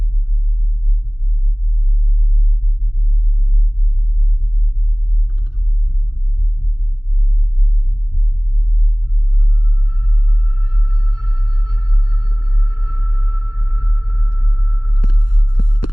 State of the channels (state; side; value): late; right; 0.71 ms